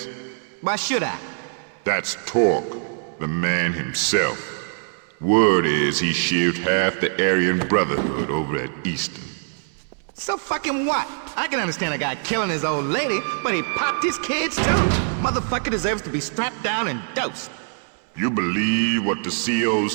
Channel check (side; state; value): left; silent; digital silence